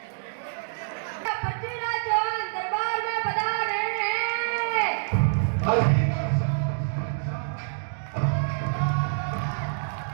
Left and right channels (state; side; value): silent; left; digital silence